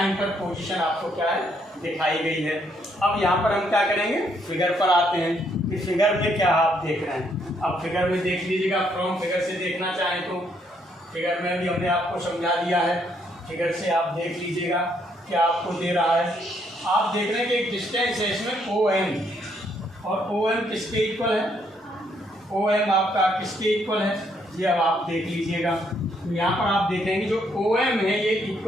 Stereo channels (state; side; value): normal; both; correlation 0.72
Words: पर position आपको क्या है, दिखाई गई है। अब यहाँ पर हम क्या करेंगे, फिगर पर आते हैं कि फिगर में क्या आप देख रहे हैं। अब फिगर में देख लीजिएगा, फ्रॉम फिगर से देखना चाहें तो फिगर में भी हमने आपको समझा दिया है, फिगर से आप देख लीजिएगा क्या आपको दे रहा है। आप देख रहे हैं कि एक डिस्टेंस है इसमें OM, और OM किसके इक्वल है, OM आपका किसके इक्वल है, ये अब आप देख लीजिएगा। यहाँ पर आप देखेंगे जो OM है ये